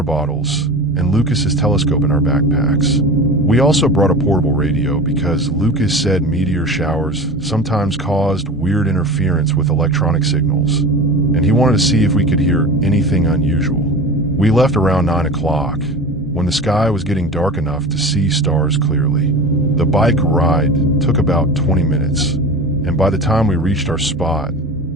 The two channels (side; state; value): both; normal; correlation 0.33